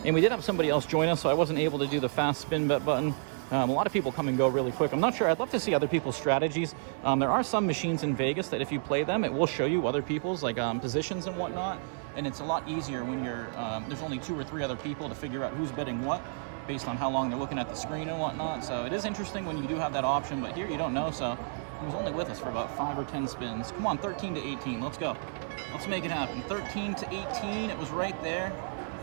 And we did have somebody else join us, so I wasn't able to do the fast spin bet button. A lot of people come and go really quick. I'm not sure. I'd love to see other people's strategies. There are some machines in Vegas that if you play them, it will show you other people's like positions and whatnot. And it's a lot easier when you're there's only 2 or 3 other people to figure out who's bidding what based on how long they're looking at the screen and whatnot. So it is interesting when you do have that option, but here you don't know. So he was only with us for about 5 or 10 spins. Come on, 13 to 18. Let's go. Let's make it happen. 13 to 18. It was right there,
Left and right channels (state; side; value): silent; left; digital silence